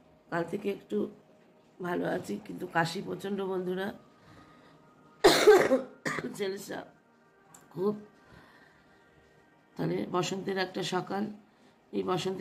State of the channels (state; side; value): identical; both; correlation 1.00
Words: কাল থেকে একটু ভালো আছি, কিন্তু কাশি প্রচণ্ড বন্ধুরা। ছেলেসা খুব। তাহলে বসন্তের একটা সকাল, এই